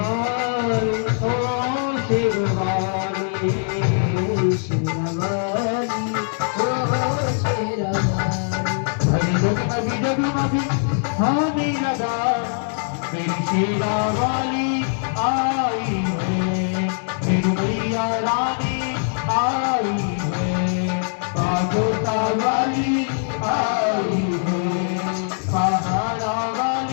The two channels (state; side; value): silent; right; digital silence